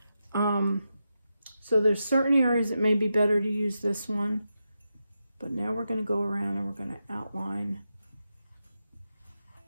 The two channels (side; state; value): both; inverted; correlation -0.88